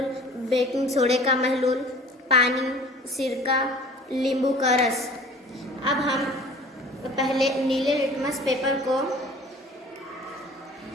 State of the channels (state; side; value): normal; both; correlation 0.46